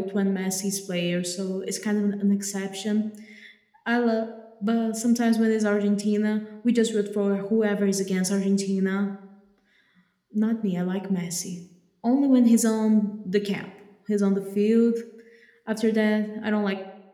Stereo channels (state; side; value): identical; both; correlation 1.00